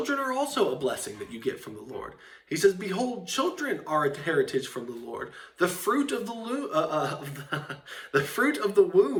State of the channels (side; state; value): both; identical; correlation 1.00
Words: are also a blessing that you get from the Lord. He says, behold, children are a heritage from the Lord. The fruit of the fruit of the